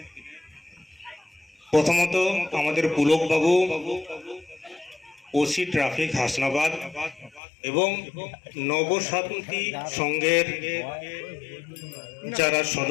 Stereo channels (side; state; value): right; drops out; at 7.4 s